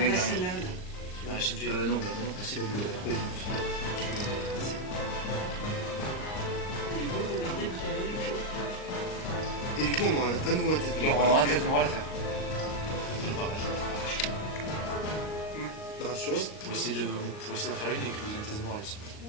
mec passer derrière. là. Tu vas arracher de vie. Non, Merci beaucoup. Du coup, regardez parce qu'il y a une chose. Et du coup, on aura à nouveau un test de il y aura un test de morale à faire. Bah, sur eux. Pour essayer d'en faire une et que vous ayez un test de morale aussi.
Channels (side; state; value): right; late; 38 ms